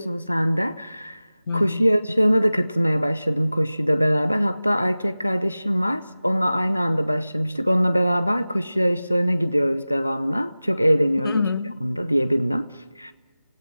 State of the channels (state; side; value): inverted; both; correlation -0.97